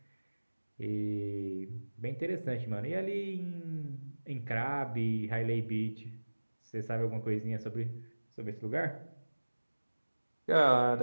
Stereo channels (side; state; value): both; inverted; correlation -1.00